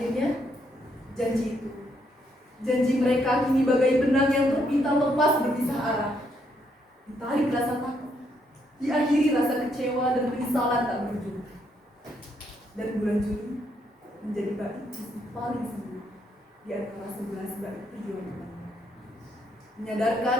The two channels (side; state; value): both; normal; correlation 0.74